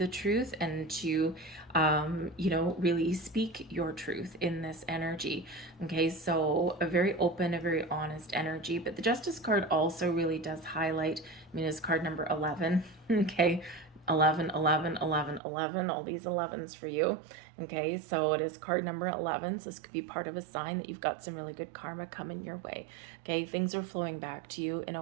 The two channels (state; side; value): drops out; left; at 15.4 s